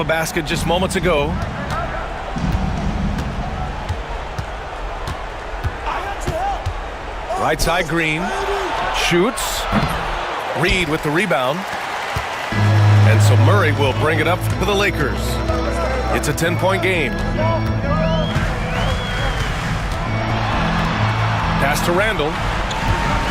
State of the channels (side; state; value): both; identical; correlation 1.00